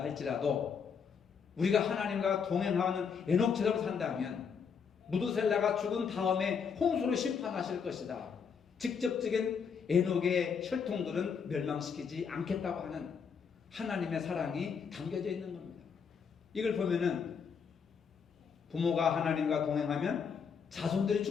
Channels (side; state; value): right; quieter; 6.4 dB